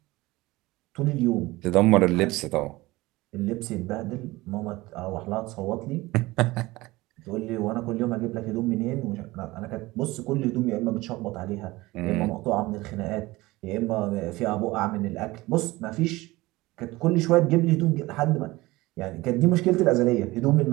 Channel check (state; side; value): quieter; left; 20.0 dB